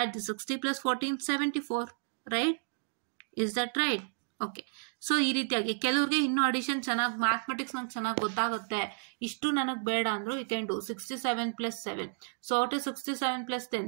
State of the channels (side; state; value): left; silent; digital silence